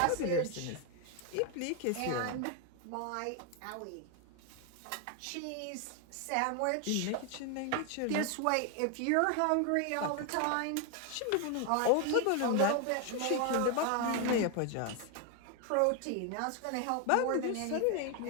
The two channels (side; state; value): both; different; correlation 0.01